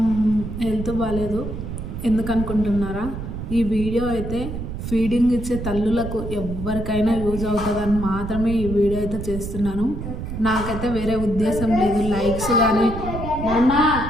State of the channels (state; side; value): noise; right; rumble, 7 dB below the sound